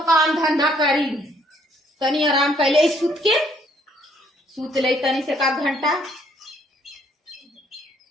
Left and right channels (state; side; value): normal; both; correlation 0.66